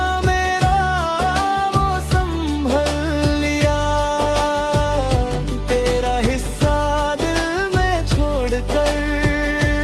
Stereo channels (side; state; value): both; identical; correlation 1.00